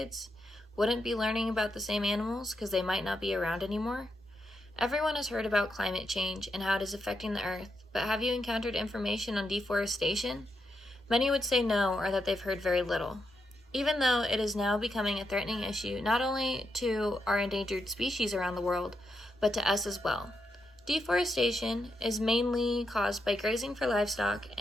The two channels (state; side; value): normal; both; correlation 0.83